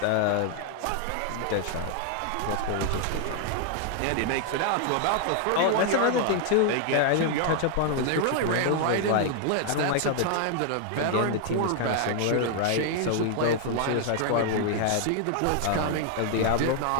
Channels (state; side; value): different; both; correlation 0.00